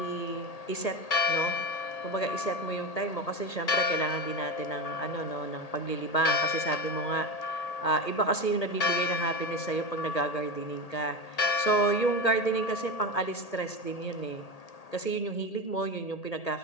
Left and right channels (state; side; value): late; right; 1.8 ms